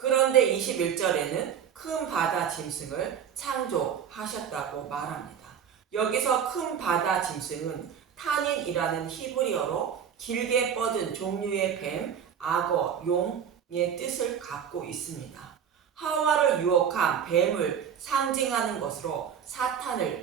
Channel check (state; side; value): quieter; left; 8.1 dB